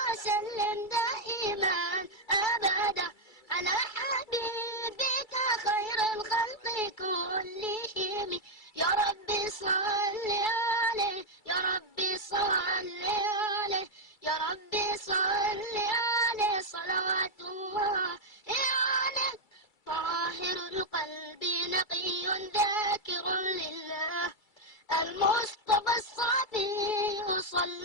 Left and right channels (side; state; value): right; late; 2.3 ms